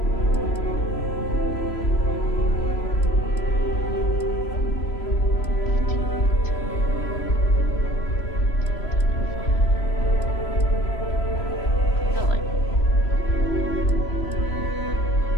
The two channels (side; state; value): right; late; 3.0 ms